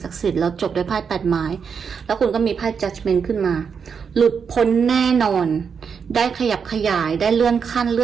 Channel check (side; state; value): left; quieter; 6.4 dB